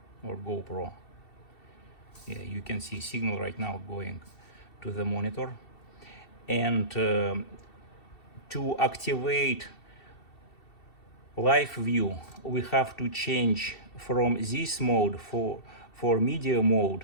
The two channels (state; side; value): late; right; 2.7 ms